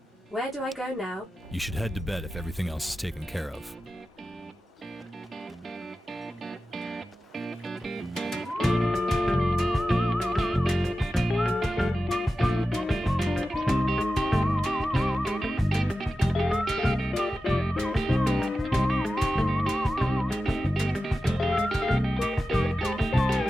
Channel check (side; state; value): both; normal; correlation 0.93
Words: Where do I go now? You should head to bed if everything else is taken care of.